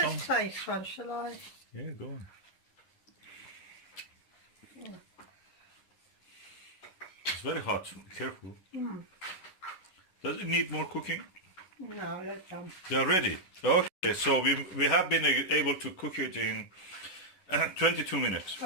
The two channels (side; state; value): right; late; 10 ms